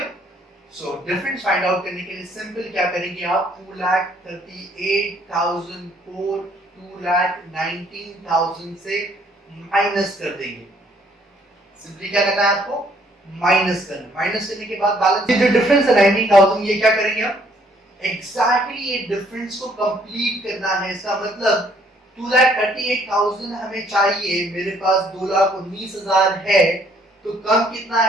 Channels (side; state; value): both; normal; correlation 0.64